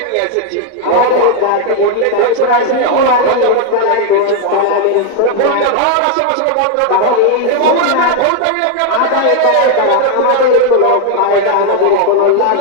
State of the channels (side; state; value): both; different; correlation 0.00